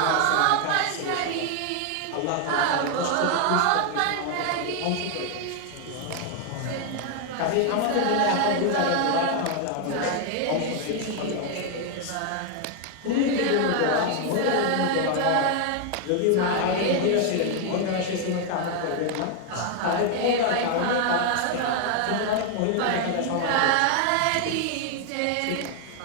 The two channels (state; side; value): different; both; correlation 0.00